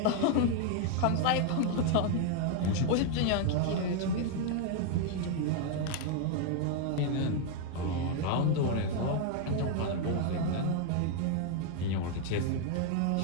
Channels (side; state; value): both; different; correlation 0.00